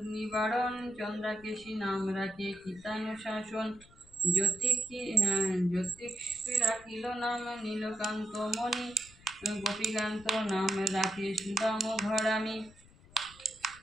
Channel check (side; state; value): left; noise; rumble, 24 dB below the sound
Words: নিবারণ, চন্দ্রাকেশী নাম রাখে কীতানুশাসন, জ্যোতিষী রাখিল নাম নীলকান্ত মণি, গোপীকান্ত নাম রাখে সুদাম ঘরামি,